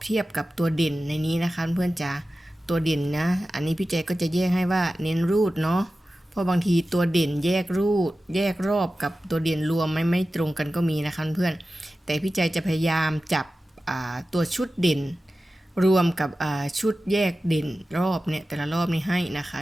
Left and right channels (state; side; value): normal; both; correlation 0.94